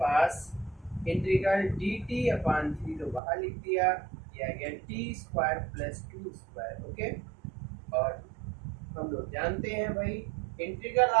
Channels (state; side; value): drops out; left; at 3.2 s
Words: इंटीग्रल dt/3, तो बाहर लिख दिया, यह आ गया t² + 2²। ओके, और हम लोग जानते हैं भाई इंटीग्रल